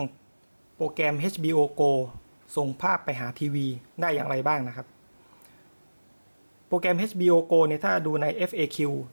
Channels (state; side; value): inverted; both; correlation -1.00